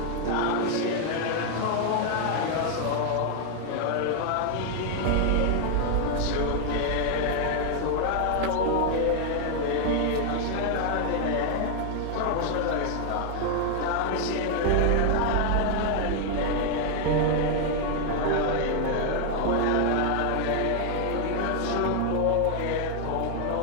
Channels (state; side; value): different; both; correlation 0.00